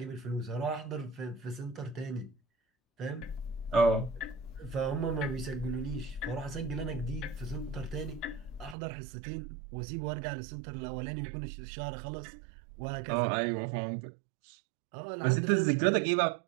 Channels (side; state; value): left; drops out; at 8.8 s